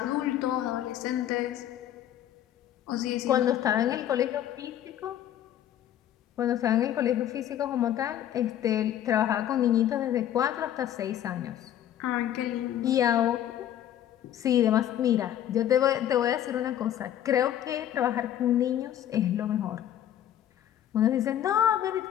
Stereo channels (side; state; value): right; quieter; 11.2 dB